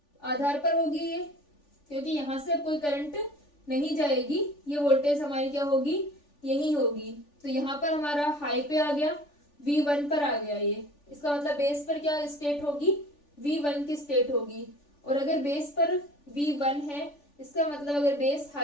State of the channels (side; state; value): right; late; 3.4 ms